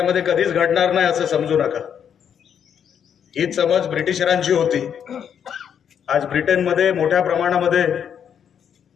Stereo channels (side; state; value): right; quieter; 8.3 dB